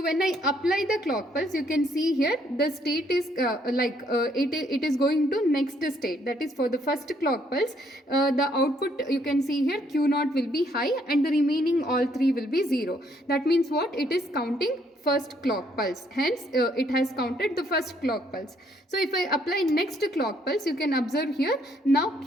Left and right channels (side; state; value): both; normal; correlation 0.69